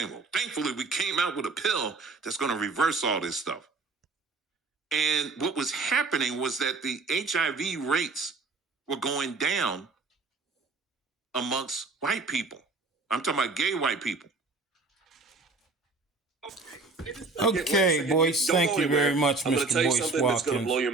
well, thankfully we came out with a pill that's going to reverse all this stuff. And what was happening was that the HIV rates were going down amongst white people. I'm talking about gay white people. Okay, boys, thank you very much, I'm going Mr. to tell you Boyce something that's going to Watkins. blow your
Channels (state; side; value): quieter; left; 3.8 dB